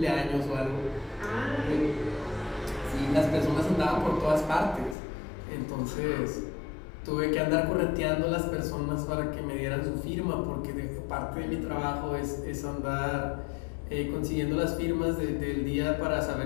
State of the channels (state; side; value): drops out; right; at 5.0 s